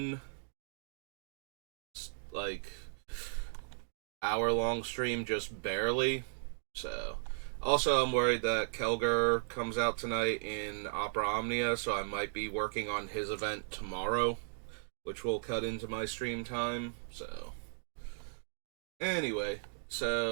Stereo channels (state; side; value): silent; left; digital silence